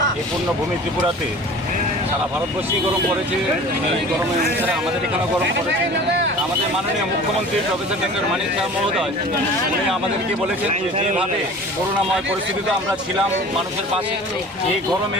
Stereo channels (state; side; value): normal; both; correlation 0.42